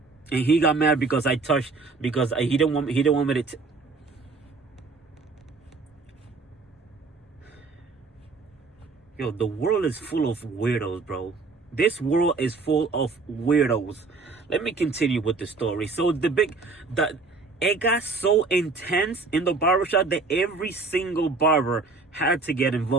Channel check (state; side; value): quieter; left; 4.0 dB